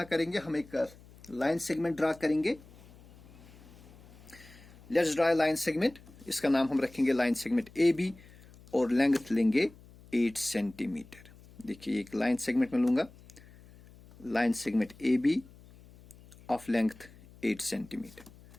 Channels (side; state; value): left; noise; hum, 23 dB below the sound